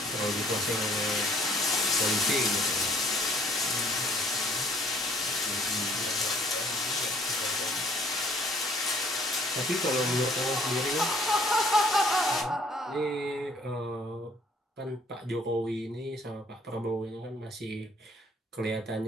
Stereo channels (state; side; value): normal; both; correlation 0.58